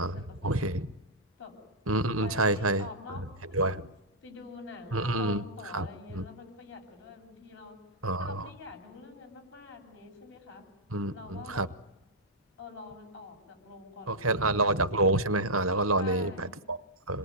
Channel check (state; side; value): normal; both; correlation -0.09